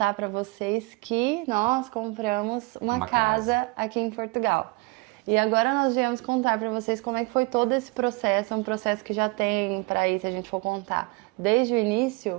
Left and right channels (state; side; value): quieter; left; 26.3 dB